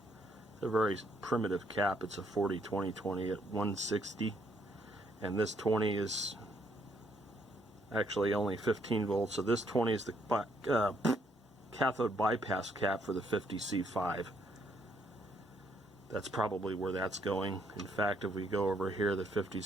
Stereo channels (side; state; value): both; normal; correlation 0.71